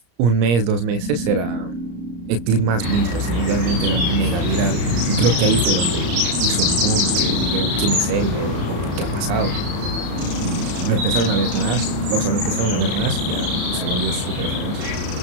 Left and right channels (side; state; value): left; late; 34 ms